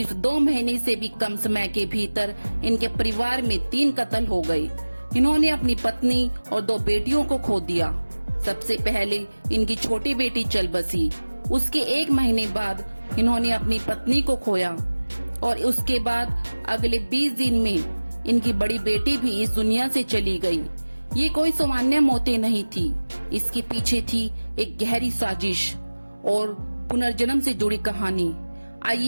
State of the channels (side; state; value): both; inverted; correlation -1.00